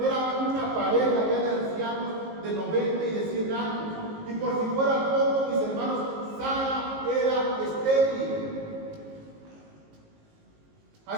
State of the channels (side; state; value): left; late; 19 ms